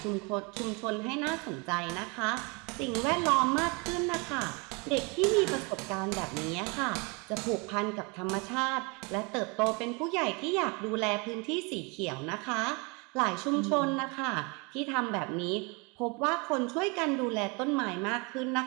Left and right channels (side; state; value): left; quieter; 30.1 dB